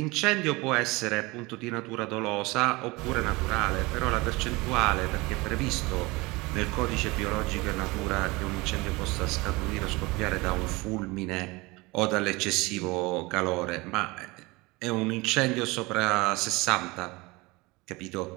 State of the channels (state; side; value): quieter; left; 23.5 dB